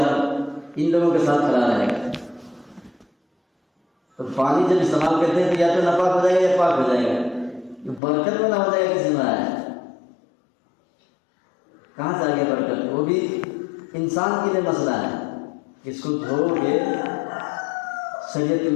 ان لوگوں کے ساتھ کھڑا رہے گا۔ تو پانی جب استعمال کرتے ہیں تو یا تو ناپاک ہو جائے گا یا پاک ہو جائے گا، برکت والا ہو جائے گا، کسی میں آیا کہاں سے آ گیا برکت؟ وہ بھی انسان کے لیے مسئلہ ہے، اس کو دھو کے شریعت کے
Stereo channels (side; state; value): right; drops out; at 8.0 s